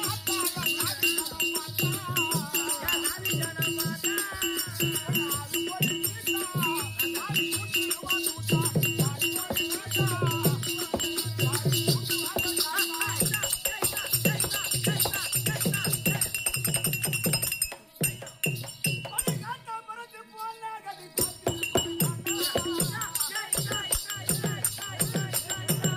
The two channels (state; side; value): identical; both; correlation 1.00